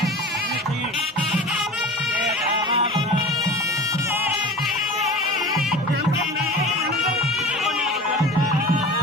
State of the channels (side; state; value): both; normal; correlation 0.36